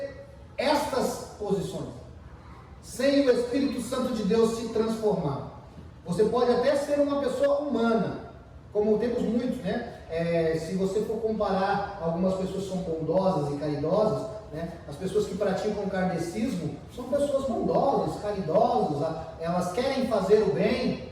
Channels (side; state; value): both; identical; correlation 1.00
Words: estas posições sem o Espírito Santo de Deus se transformar. Você pode até ser uma pessoa humana, como temos muitos, né? Se você for comparar, algumas pessoas são bondosas e caridosas, né? As pessoas que praticam kardecismo são pessoas bondosas, caridosas, elas querem fazer o bem,